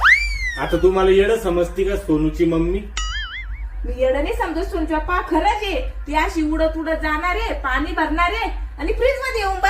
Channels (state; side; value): identical; both; correlation 1.00